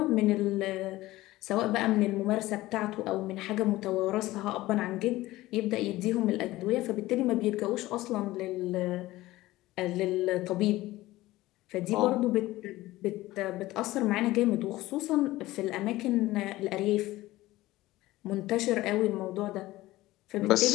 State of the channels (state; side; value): quieter; right; 17.5 dB